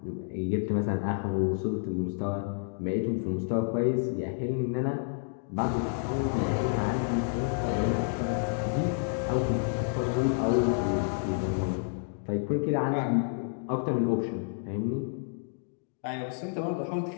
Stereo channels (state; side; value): silent; right; digital silence